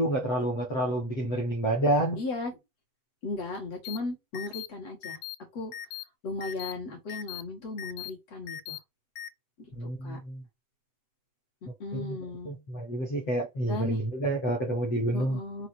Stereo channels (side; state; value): right; late; 8.0 ms